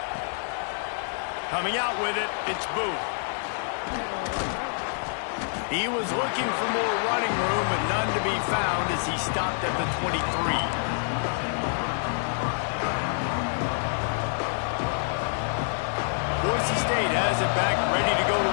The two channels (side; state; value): right; silent; digital silence